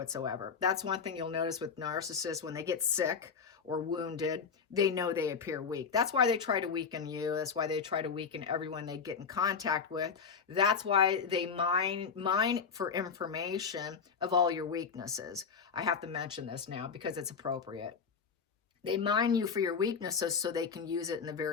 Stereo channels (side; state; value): right; quieter; 6.0 dB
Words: That's one thing you'll notice with narcissists. When they get sick or wounded, they know they appear weak. That's why they try to weaken you. That's why they try to weaken everyone they get in contact with. That's why they mine for information of all your weaknesses. I have to mention this now because it's appropriate. They mine you for your weaknesses so they can use it in the